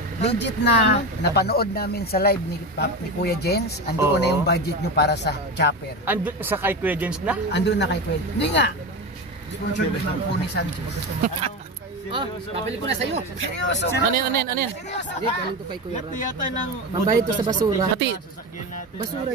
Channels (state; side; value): normal; both; correlation 0.22